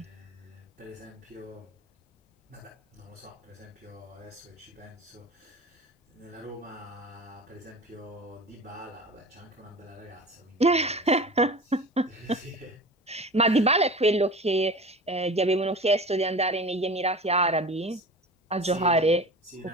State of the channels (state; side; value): normal; both; correlation 0.35